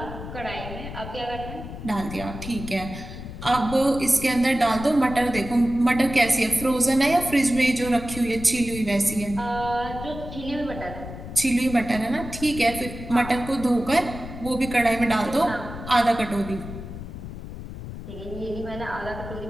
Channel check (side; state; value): left; noise; rumble, 10 dB below the sound